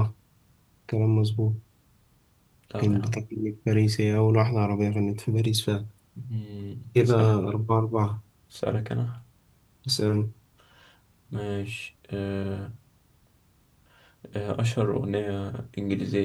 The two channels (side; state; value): both; identical; correlation 1.00